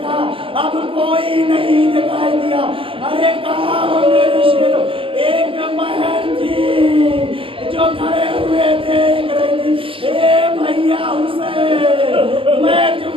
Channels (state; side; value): late; left; 0.26 ms